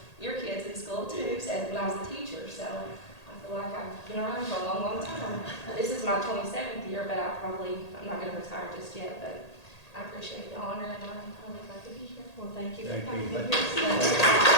your kids in school too, so when I was a teacher. So I feel like I've been around for a long, long time. This is my 27th year, but I'm not going to retire just yet, but I appreciate the honor, and I'm really glad to be here. Well, thank you for Thank coming. you.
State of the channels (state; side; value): late; right; 1.8 ms